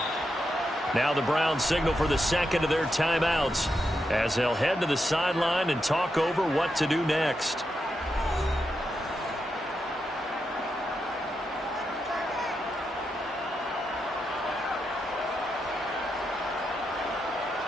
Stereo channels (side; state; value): both; normal; correlation 0.85